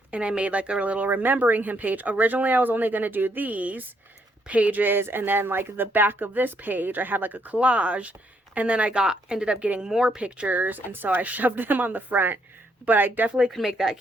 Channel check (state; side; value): normal; both; correlation 0.73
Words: And I made like a little remembering him page. Originally, I was only going to do these pages. And then like the back of this page, I had like a collage. And then I ended up getting more pictures. And so I shoved them on the front. But I definitely could make that